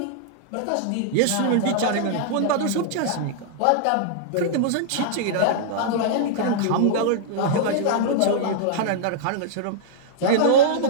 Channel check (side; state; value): both; different; correlation -0.01